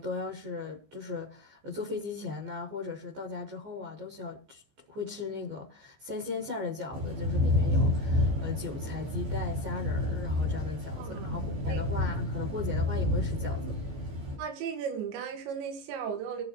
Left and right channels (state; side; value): late; left; 14 ms